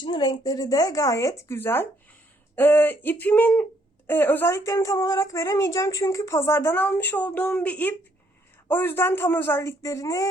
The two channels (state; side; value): normal; both; correlation 0.69